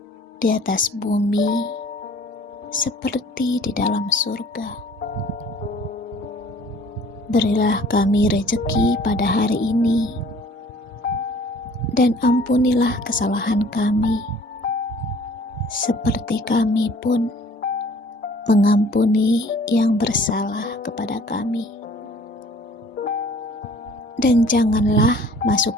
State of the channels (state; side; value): normal; both; correlation 0.52